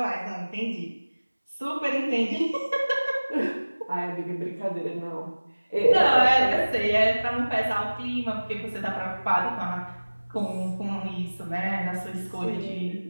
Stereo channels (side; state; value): both; inverted; correlation -1.00